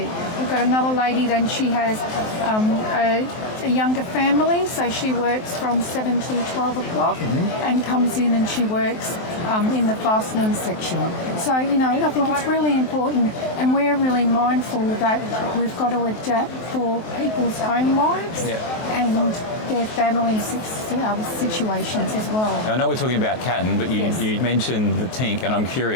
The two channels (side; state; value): right; late; 23 ms